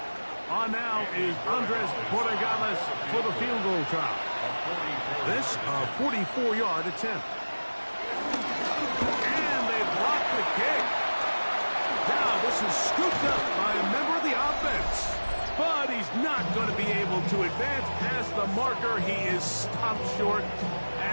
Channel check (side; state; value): both; inverted; correlation -1.00